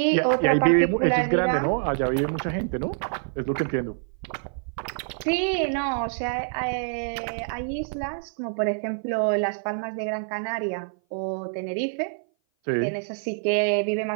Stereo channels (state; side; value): silent; left; 57 dB below the other